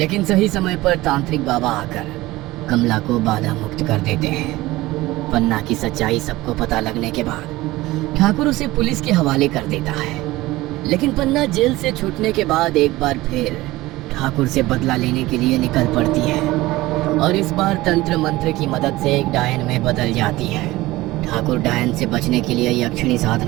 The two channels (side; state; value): left; quieter; 18.6 dB